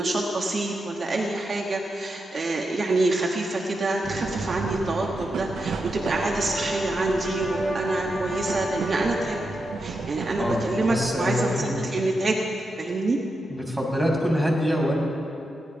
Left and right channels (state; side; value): normal; both; correlation 0.87